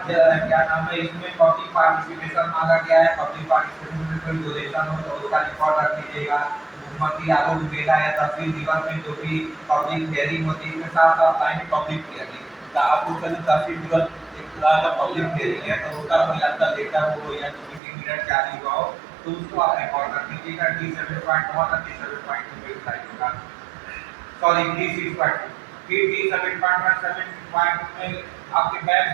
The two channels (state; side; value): drops out; left; at 17.8 s